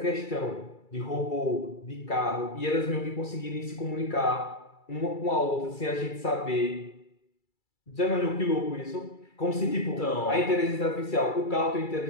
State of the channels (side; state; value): right; late; 2.3 ms